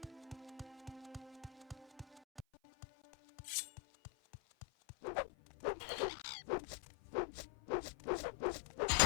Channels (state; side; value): drops out; right; at 2.5 s